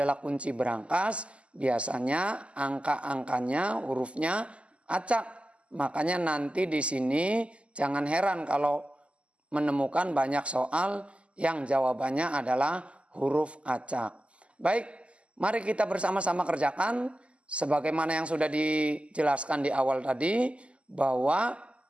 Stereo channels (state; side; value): late; left; 0.057 ms